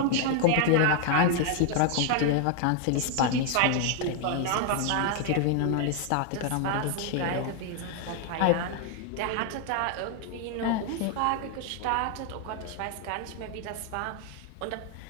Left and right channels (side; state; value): both; different; correlation 0.00